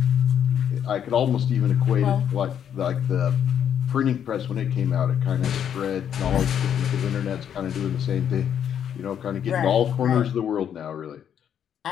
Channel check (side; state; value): right; quieter; 9.0 dB